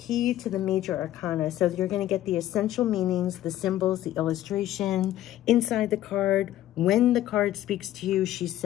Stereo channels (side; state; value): right; quieter; 13.5 dB